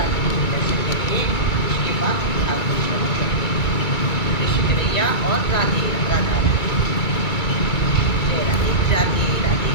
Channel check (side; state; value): right; late; 2.3 ms